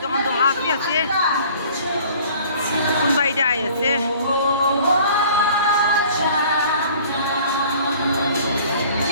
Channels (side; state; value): both; inverted; correlation -0.51